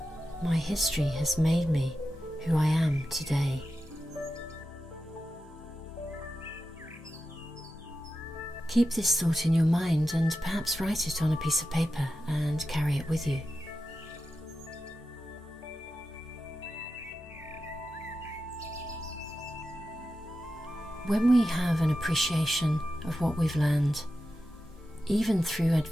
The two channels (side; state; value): both; normal; correlation 0.91